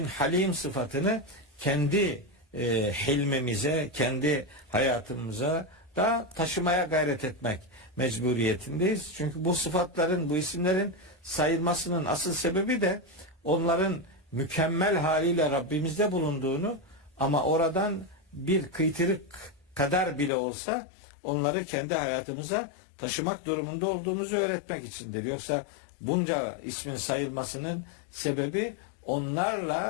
halim sıfatını kendi hilmimize, kendi hayatımıza da taşımaya gayret etmek mecburiyetindeyiz. Çünkü bu sıfatların, bu isimlerin sayılmasının asıl sebebi de onların mükemmel haliyle Rabbimizde bulunduğunu ama oradan bir kıytırık kadar bile olsa onları kendi hayatımıza taşımak durumunda olduğumuzu öğretmek içindir. Yoksa bunca ismin sayılmasının sebebi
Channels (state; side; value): drops out; right; at 20.3 s